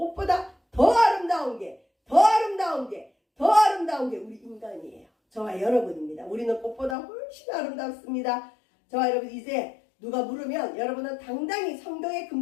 더 아름다운 게 우리 인간이에요. 저와 여러분입니다. 우리는 꽃보다 훨씬 아름답습니다. 저와 여러분, 이제 누가 물으면 여러분은 당당히 성경의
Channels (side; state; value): right; drops out; at 7.0 s